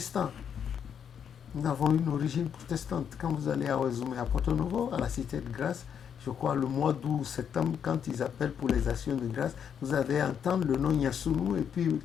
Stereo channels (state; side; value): quieter; right; 8.0 dB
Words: Nous avons une origine protestante. Quand vous allez à Ouazoumé, à Porto Novo, à la Cité de Grâce, je crois le mois d'août, septembre, quand ils appellent pour les actions de grâce, vous allez entendre le nom Yassounou et puis